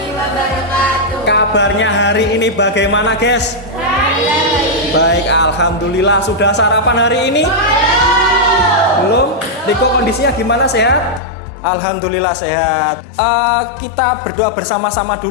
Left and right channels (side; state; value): right; drops out; at 11.2 s